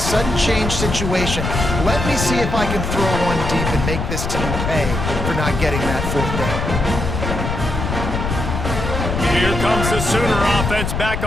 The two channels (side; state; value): left; noise; rumble, 3 dB below the sound